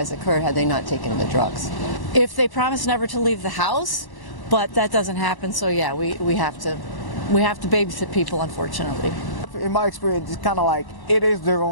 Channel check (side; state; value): right; late; 1.1 ms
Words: occur had they not taken the drugs. If they promise never to leave the house, but that doesn't happen, so yeah, we have to babysit people, unfortunately. In my experience, it's kind of like it is their